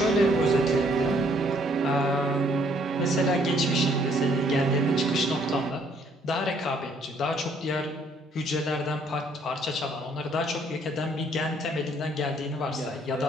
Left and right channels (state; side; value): normal; both; correlation 0.64